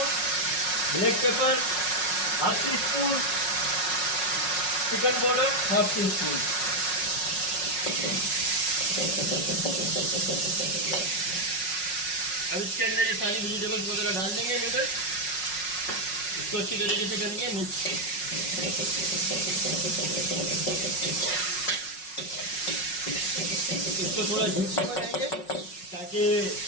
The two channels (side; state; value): right; late; 5.5 ms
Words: black pepper half tea spoon, chicken powder half tea spoon. अब इसके अंदर ये सारी वेजिटेबल्स वगैरह डाल देंगे, नूडल्स। इसको अच्छी तरीके से करेंगे मिक्स। इसको थोड़ा जूसी बनाएंगे ताकि